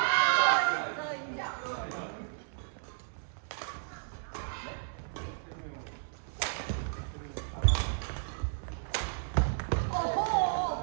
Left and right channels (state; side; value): silent; left; 56 dB below the other